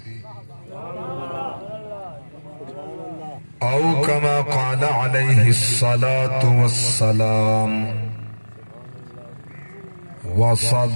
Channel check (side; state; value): both; inverted; correlation -1.00